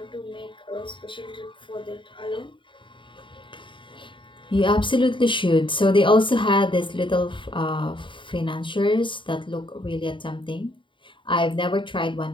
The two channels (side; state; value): right; late; 0.24 ms